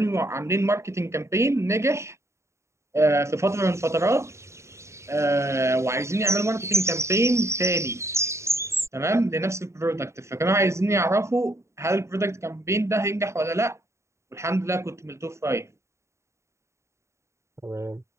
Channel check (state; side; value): late; left; 0.14 ms